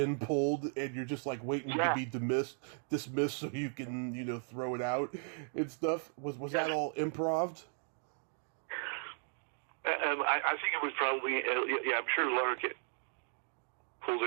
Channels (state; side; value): silent; left; 54 dB below the other